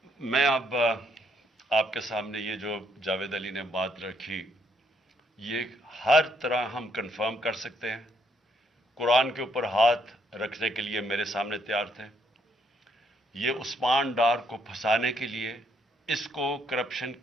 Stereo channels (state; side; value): normal; both; correlation 0.72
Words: میں اب آپ کے سامنے یہ جو جاوید علی نے بات رکھی، یہ ہر طرح ہم کنفرم کر سکتے ہیں. قرآن کے اوپر ہاتھ رکھنے کے لیے میرے سامنے تیار تھے. یہ عثمان ڈار کو پھنسانے کے لیے، اس کو کرپشن